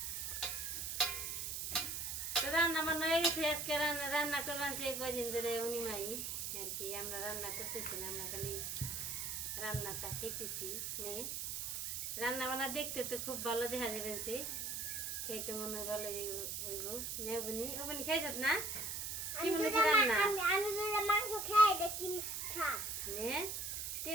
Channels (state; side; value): noise; right; hiss, 3 dB below the sound